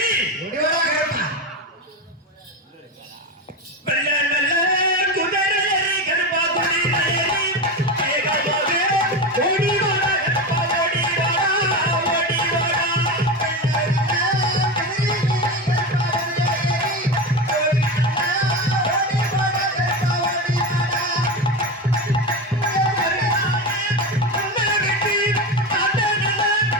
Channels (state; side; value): normal; both; correlation 0.21